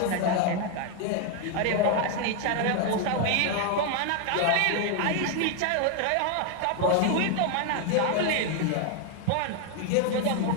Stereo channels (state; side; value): different; both; correlation 0.01